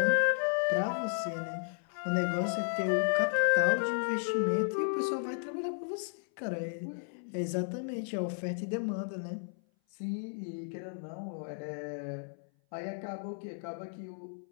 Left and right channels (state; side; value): silent; right; 55 dB below the other